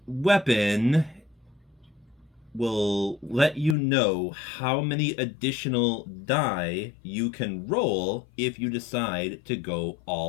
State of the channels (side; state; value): right; drops out; at 3.8 s